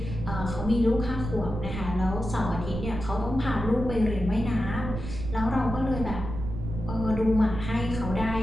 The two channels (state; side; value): noise; right; rumble, 7 dB below the sound